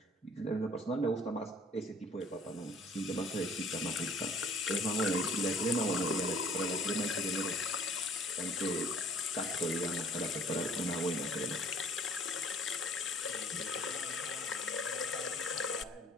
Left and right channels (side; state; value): both; normal; correlation 0.55